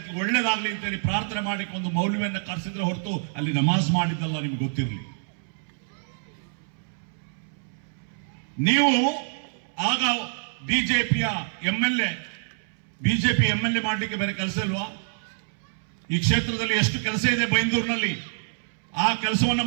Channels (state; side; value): silent; left; 61 dB below the other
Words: ಒಳ್ಳೇದಾಗ್ಲಿ ಅಂತೇಳಿ ಪ್ರಾರ್ಥನೆ ಮಾಡಕ್ಕೆ ಒಂದು ಮೌಲ್ಯವನ್ನು ಕರೆಸಿದ್ರೆ ಹೊರತು ಅಲ್ಲಿ ನಮಾಜ್ ಮಾಡಿದ್ದಲ್ಲ, ನಿಮ್ಗೆ ಗೊತ್ತಿರಲಿ. ನೀವು ಆಗ ಬಿಜೆಪಿ ಎಂಎಲ್ಎ ಮಾಡಲಿಕ್ಕೆ ಬೇರೆ ಕೆಲಸ ಇಲ್ವಾ? ಈ ಕ್ಷೇತ್ರದಲ್ಲಿ ಎಷ್ಟು ಕೆಲಸ ಇದೆ ಬೈಂದೂರಿನಲ್ಲಿ, ಆ ಕೆಲಸವನ್ನ